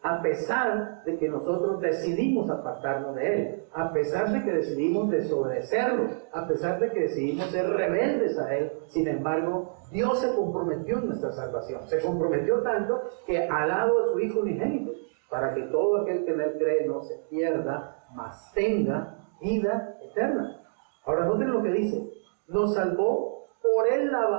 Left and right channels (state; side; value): silent; left; digital silence